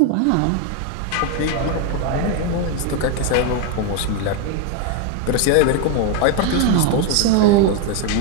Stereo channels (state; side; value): different; both; correlation 0.01